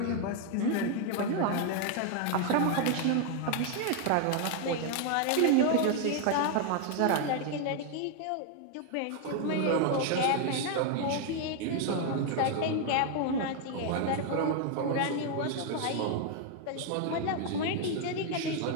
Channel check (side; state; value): both; different; correlation 0.00